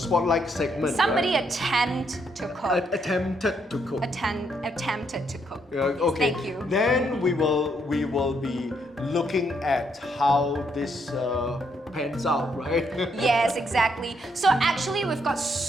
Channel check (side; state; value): both; normal; correlation 0.74